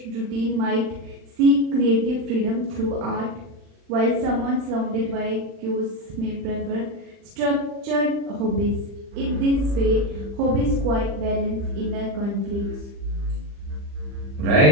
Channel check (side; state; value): left; late; 40 ms